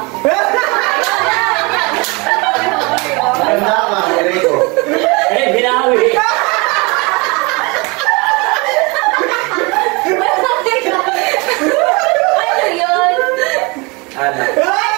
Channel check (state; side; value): quieter; left; 28.0 dB